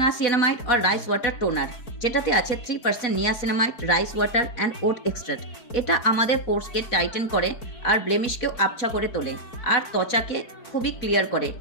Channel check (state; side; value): late; right; 4.1 ms